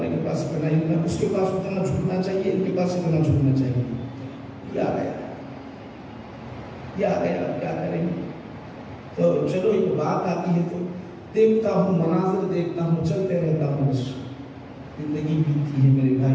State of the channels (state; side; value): identical; both; correlation 1.00